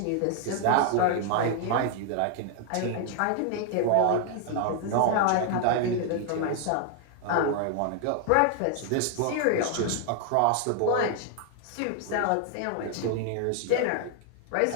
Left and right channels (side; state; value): both; different; correlation 0.00